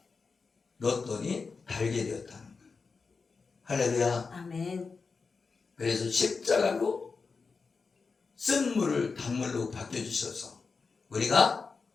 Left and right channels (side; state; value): right; quieter; 4.7 dB